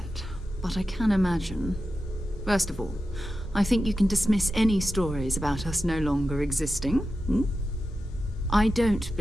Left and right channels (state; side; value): normal; both; correlation 0.91